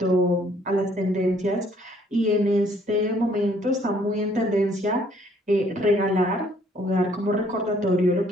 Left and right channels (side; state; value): both; normal; correlation 0.63